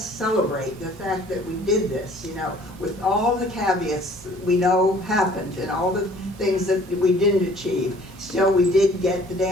celebrate the fact that we did this, with all the caveats that we know happened and all the things that we didn't achieve. Still, we did get the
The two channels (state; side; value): normal; both; correlation 0.54